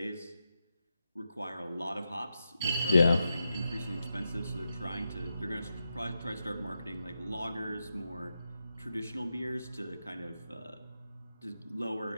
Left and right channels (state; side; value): inverted; both; correlation -0.87